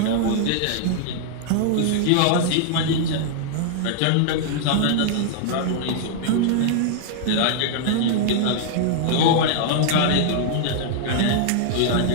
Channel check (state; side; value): different; both; correlation -0.01